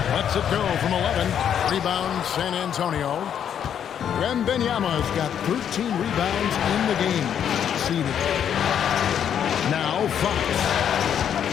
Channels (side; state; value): right; quieter; 8.9 dB